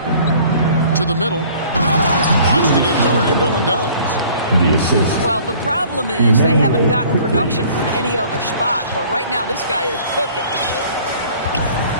To the middle. Wants to get to Randall and does. The assist. Well, the problem is they haven't gotten production from any other spot. But right now, this guy is cooking.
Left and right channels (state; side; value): inverted; both; correlation -0.52